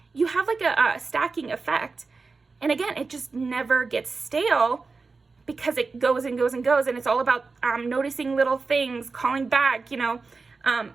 you have like a stacking effect. And again, it just never gets stale, because it goes and goes and goes, and it's all about noticing little things, calling back, you know.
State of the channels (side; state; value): left; quieter; 4.2 dB